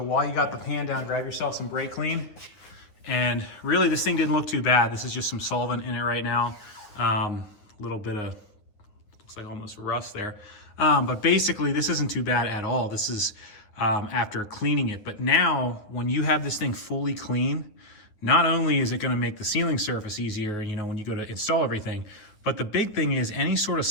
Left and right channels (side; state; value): right; late; 9.5 ms